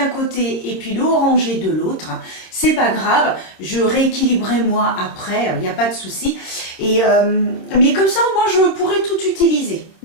côté et puis le orangé de l'autre. C'est pas grave, je rééquilibrerai moi après, il n'y a pas de souci. Et mais comme ça, moi je pourrais tout utiliser.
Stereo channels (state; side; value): late; right; 26 ms